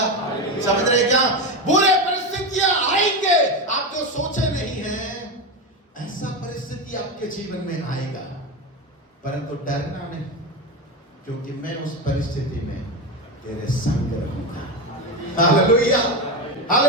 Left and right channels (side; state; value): both; normal; correlation 0.16